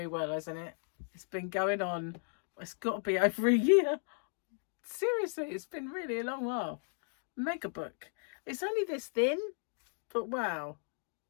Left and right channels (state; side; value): silent; right; 54 dB below the other